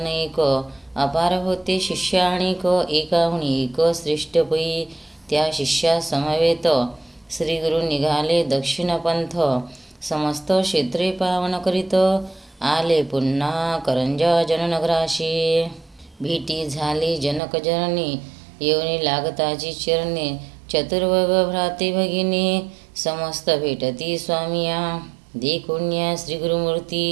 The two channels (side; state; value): left; drops out; at 17.4 s